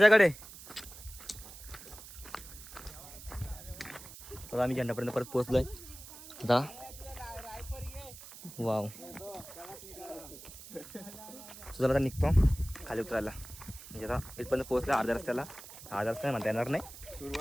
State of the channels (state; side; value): noise; right; hiss, 15 dB below the sound